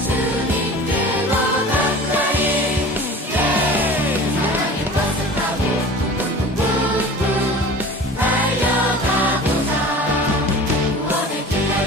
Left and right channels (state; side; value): normal; both; correlation 0.39